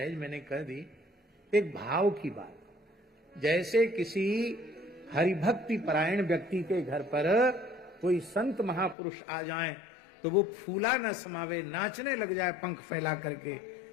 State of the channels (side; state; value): right; drops out; at 9.0 s